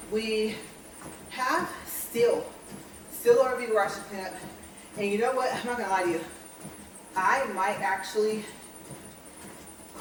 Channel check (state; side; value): identical; both; correlation 1.00